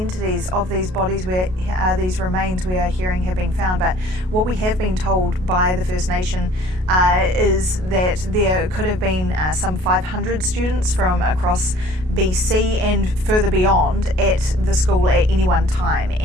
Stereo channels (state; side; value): late; left; 33 ms